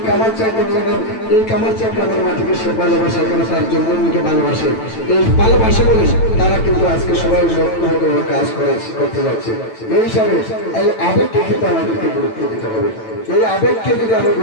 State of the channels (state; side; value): late; right; 9.0 ms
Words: কামারচা গ্রামের মাটিকে সে ভালোবাসে, এখানে তার জন্মভূমিকে ভালোবাসে। এই ভালোবাসে বলে তারা কিন্তু আজকে সবাই লক্ষ্যবদ্ধ কাজ করতে যাচ্ছে। এই হিসাবে এই আবেগকে কিন্তু আমাদেরকে গুরুত্ব দিতে হবে। এই আবেগকে যদি আমরা